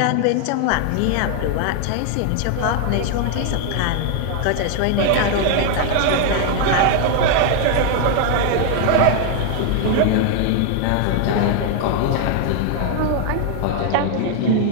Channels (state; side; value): different; both; correlation 0.00